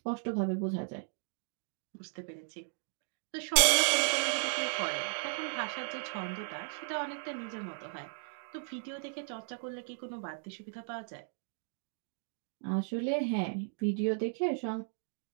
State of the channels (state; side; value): silent; left; digital silence